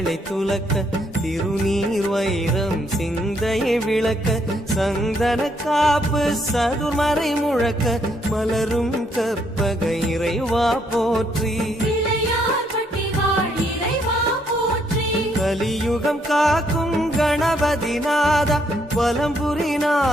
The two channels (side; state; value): both; normal; correlation 0.72